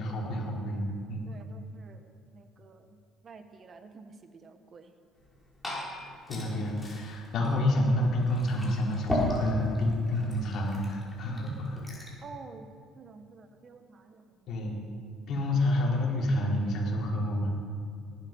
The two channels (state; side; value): normal; both; correlation 0.66